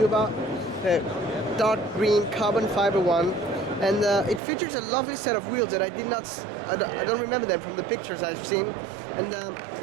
about, the dark green carbon fiber one. And it features a lovely set of wheels that I don't remember them from the pictures I've seen. And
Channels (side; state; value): left; drops out; at 4.4 s